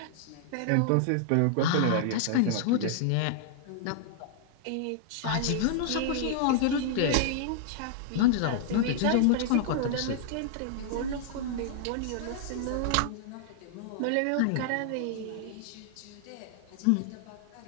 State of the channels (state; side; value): different; both; correlation -0.01